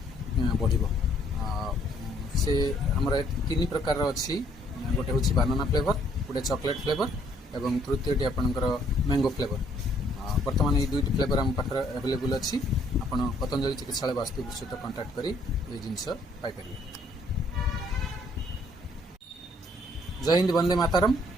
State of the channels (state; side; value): normal; both; correlation 0.65